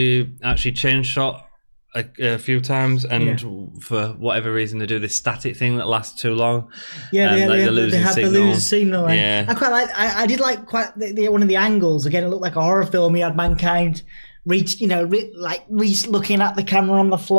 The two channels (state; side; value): inverted; both; correlation -1.00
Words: actually changed shot a few times, and for whatever reason they do this static thing that lasts too long. They have the losing signal. Yeah. I quite like. I did like quite one of the angles. Again, it looked like a horror film. He had Mankind Reese looking at the camera on the